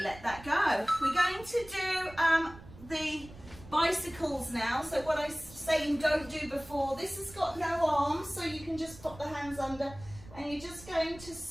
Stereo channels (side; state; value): right; noise; rumble, 18 dB below the sound